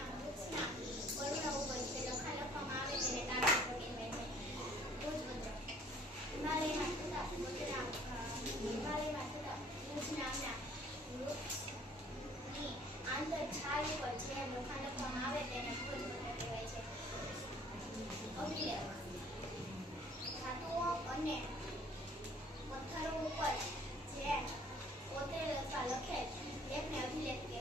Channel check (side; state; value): both; normal; correlation 0.55